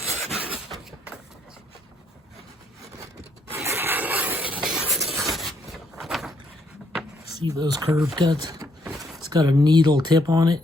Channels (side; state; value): both; normal; correlation 0.72